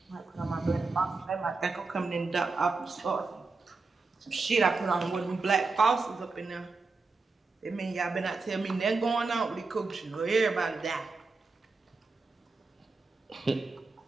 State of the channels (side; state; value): left; quieter; 3.9 dB